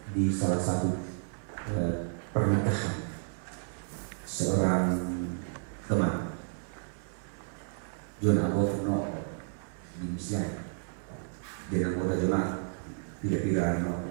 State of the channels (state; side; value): silent; left; 57 dB below the other